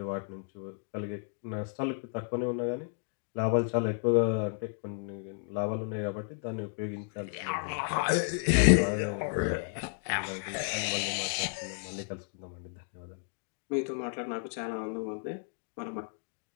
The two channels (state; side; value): silent; right; 56 dB below the other